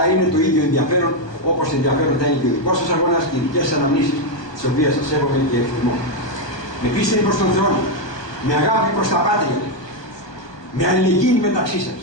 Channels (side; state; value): right; late; 1.2 ms